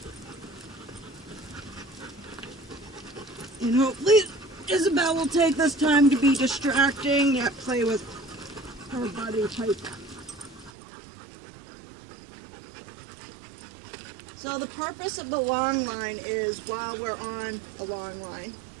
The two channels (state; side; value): drops out; left; at 10.7 s